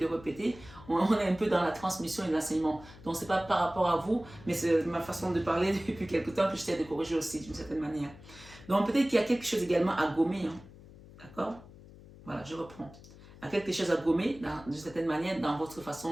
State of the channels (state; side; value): noise; left; hum, 20 dB below the sound